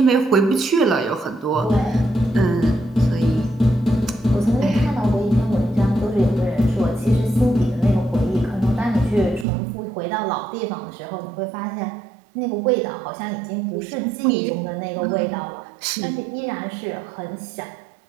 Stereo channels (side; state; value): left; drops out; at 9.5 s